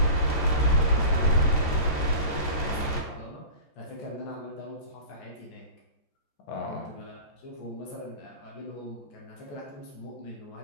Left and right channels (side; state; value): right; late; 14 ms